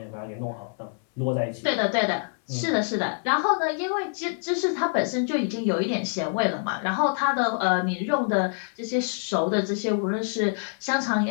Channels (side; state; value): right; silent; 61 dB below the other